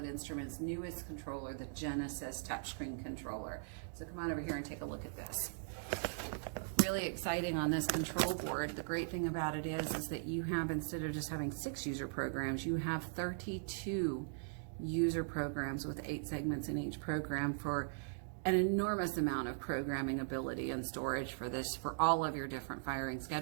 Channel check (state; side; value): silent; left; digital silence